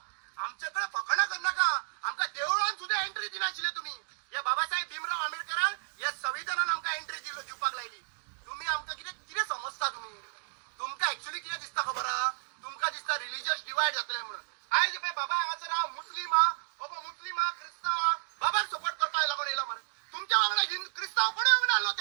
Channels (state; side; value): silent; left; digital silence